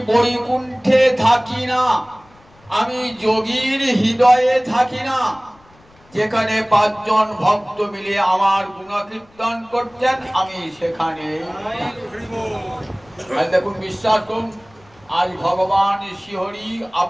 বৈকুণ্ঠে থাকি না আমি যোগীর হৃদয়ে থাকি না যেখানে পাঁচজন ভক্ত মিলে আমার গুণকীর্তন করছেন আমি সেখানে দেখুন বিশ্বাস করুন আজ ভগবান শ্রীহরি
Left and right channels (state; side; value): noise; left; rumble, 29 dB below the sound